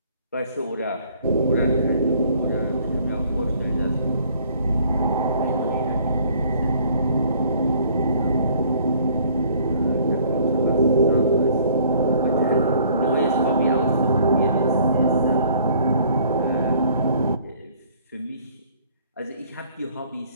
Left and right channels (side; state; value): both; inverted; correlation -0.58